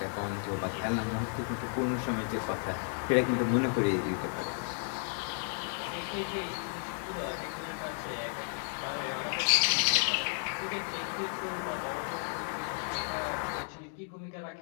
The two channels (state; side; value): silent; right; 56 dB below the other